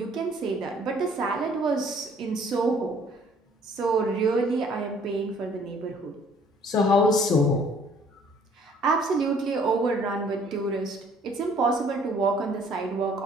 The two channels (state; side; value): normal; both; correlation 0.58